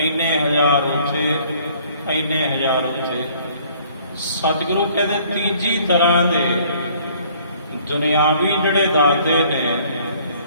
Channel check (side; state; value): both; inverted; correlation -0.58